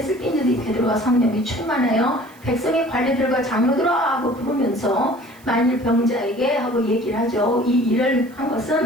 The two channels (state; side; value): noise; right; hiss, 27 dB below the sound